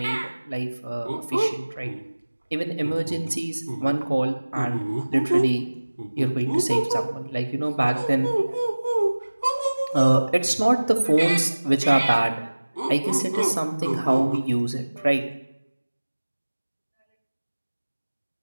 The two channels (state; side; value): inverted; both; correlation -1.00